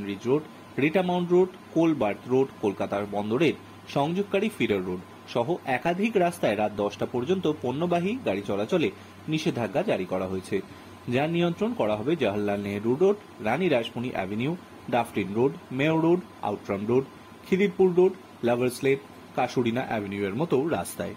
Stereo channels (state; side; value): identical; both; correlation 1.00